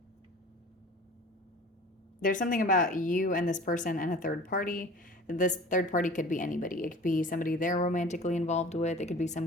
There's something about you and this person and a third party. This third party could be anybody. It could be somebody they're romantically involved with. It could be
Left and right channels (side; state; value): both; normal; correlation 0.43